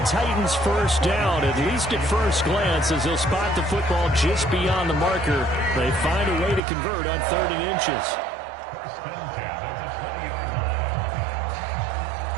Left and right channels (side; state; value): left; drops out; at 6.6 s